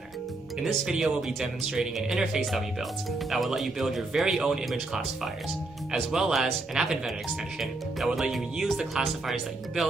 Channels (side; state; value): left; quieter; 3.1 dB